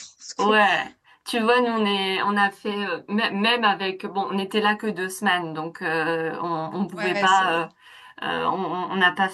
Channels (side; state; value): both; identical; correlation 1.00